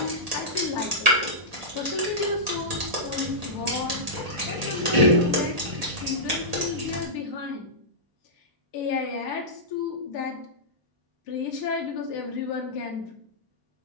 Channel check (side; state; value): left; late; 1.0 ms